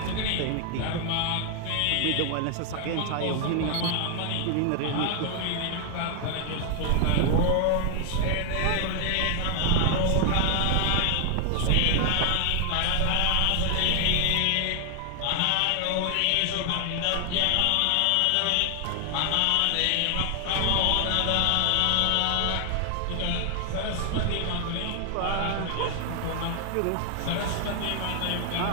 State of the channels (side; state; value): both; different; correlation 0.00